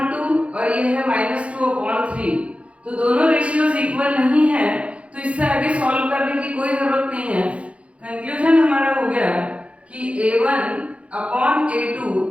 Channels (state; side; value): late; left; 0.062 ms